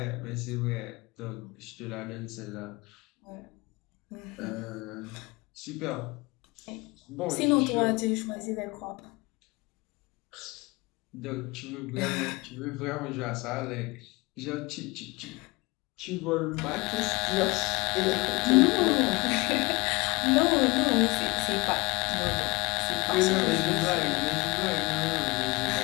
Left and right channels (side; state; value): right; quieter; 24.6 dB